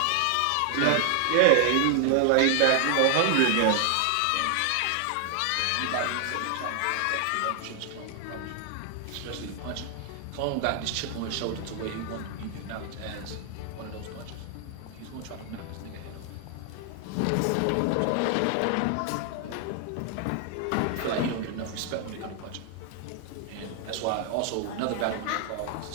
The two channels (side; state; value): both; different; correlation 0.00